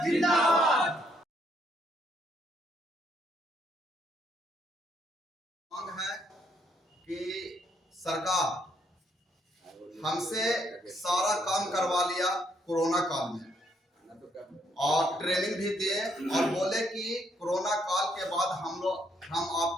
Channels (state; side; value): normal; both; correlation 0.72